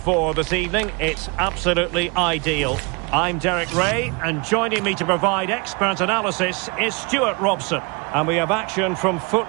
this evening. It's absolutely ideal. I'm Derek Ray, and joining me to provide expert analysis is Stuart Robson. And we have action from Foot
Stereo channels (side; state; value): left; quieter; 30.5 dB